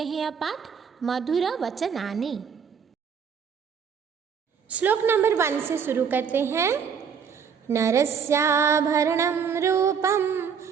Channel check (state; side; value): quieter; left; 6.8 dB